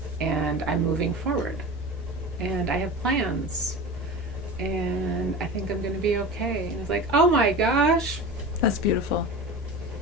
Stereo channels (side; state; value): both; normal; correlation 0.31